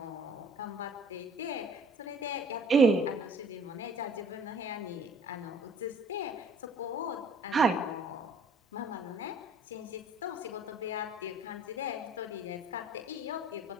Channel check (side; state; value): both; normal; correlation 0.53